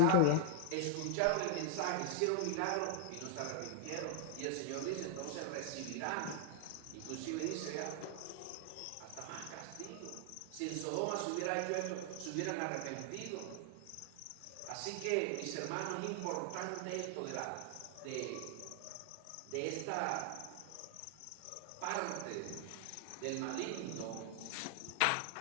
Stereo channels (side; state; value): both; different; correlation 0.00